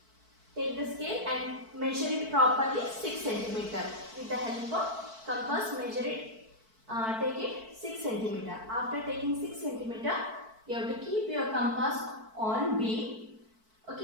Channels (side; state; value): left; late; 4.5 ms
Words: Take the scale and measure it properly 6 cm. With the help of compass, measure it, take it 6 cm. After taking 6 cm, you have to keep your compass on B.